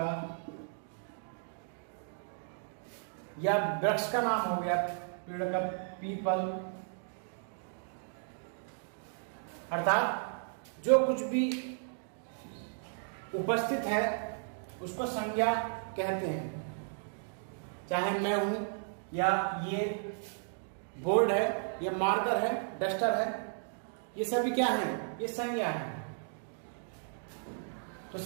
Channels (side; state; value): left; silent; digital silence